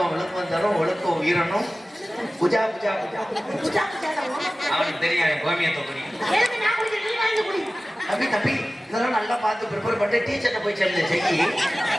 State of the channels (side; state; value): both; normal; correlation 0.96